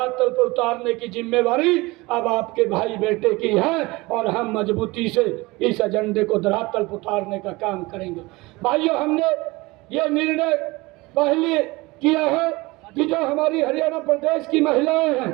पर उतारने की जिम्मेवारी अब आपके भाई बेटे की है और हम मजबूती से इस एजेंडे को धरातल पर उतारने का काम करेंगे। भाइयों, हमने ये निर्णय पहले किया है कि जो हमारी हरियाणा प्रदेश की महिलाएं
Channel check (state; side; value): quieter; left; 22.5 dB